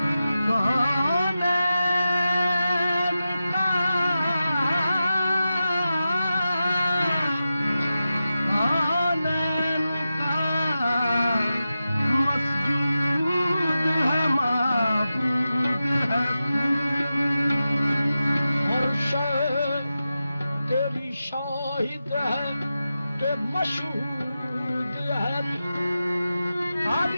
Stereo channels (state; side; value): inverted; both; correlation -0.92